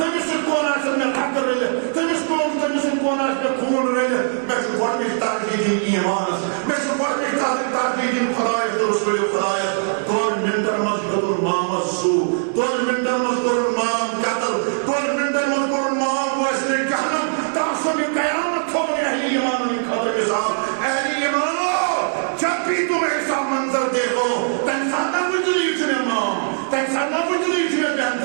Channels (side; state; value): left; silent; digital silence